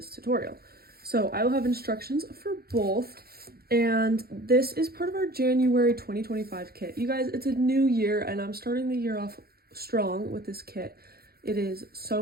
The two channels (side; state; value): left; late; 0.45 ms